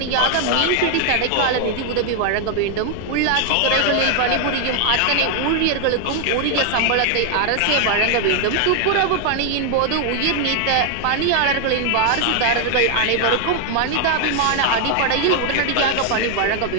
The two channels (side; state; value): both; different; correlation 0.00